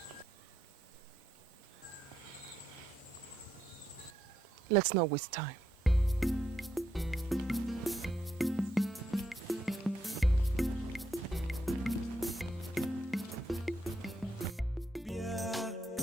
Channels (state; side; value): normal; both; correlation 0.79